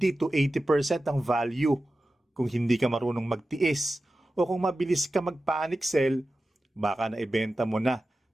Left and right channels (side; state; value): both; normal; correlation 0.94